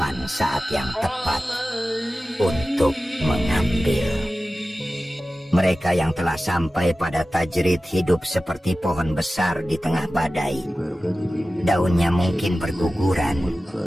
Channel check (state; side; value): normal; both; correlation 0.95